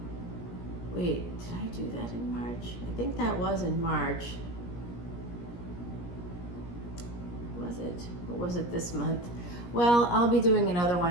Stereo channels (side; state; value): right; late; 17 ms